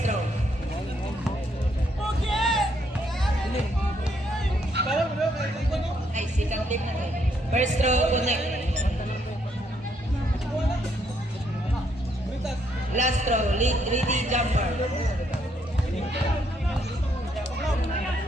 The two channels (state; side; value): normal; both; correlation 0.73